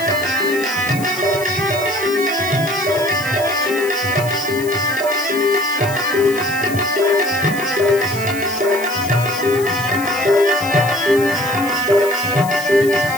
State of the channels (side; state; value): left; noise; hiss, 13 dB below the sound